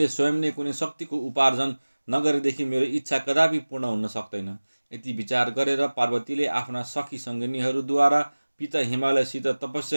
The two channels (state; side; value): inverted; both; correlation -1.00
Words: स्वयं नै कुनै शक्तिको उपार्जन नगरेदेखि मेरो इच्छा कदापि पूर्ण हुन सक्दैन। यति विचार गरेर पार्वतीले आफ्ना सखी सङ्गिनीहरूद्वारा पिता हिमालयसित